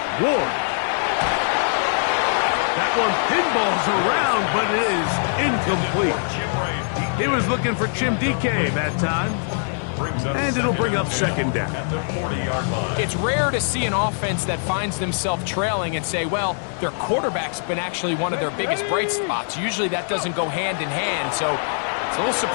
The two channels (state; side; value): silent; right; 64 dB below the other